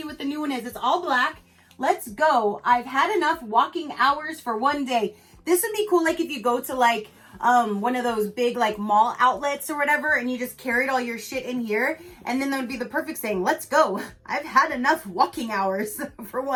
what the new one is. It's all black. Let's go. I've had enough walking hours for one day. This would be cool like if you go to like one of those big like mall outlets or whatever and you just carried all your shit in here, and then that would be the perfect saying, let's go. I've had enough walking hours for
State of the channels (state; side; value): identical; both; correlation 1.00